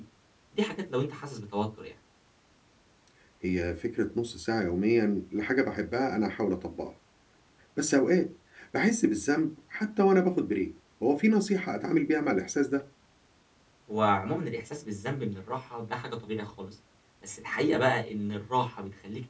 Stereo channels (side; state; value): both; identical; correlation 1.00